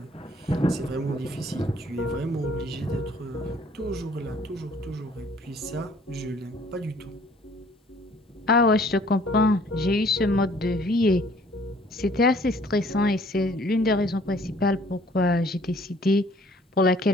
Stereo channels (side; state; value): both; normal; correlation 0.57